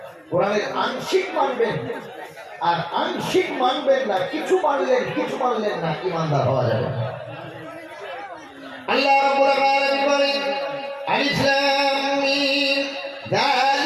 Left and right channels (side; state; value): both; identical; correlation 1.00